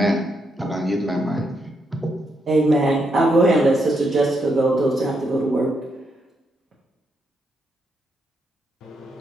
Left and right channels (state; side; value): normal; both; correlation 0.79